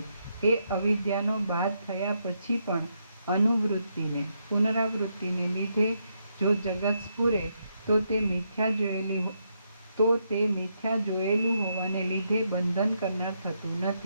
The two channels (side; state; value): both; inverted; correlation -0.79